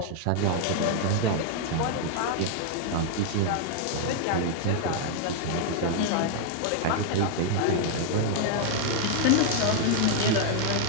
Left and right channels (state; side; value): different; both; correlation 0.00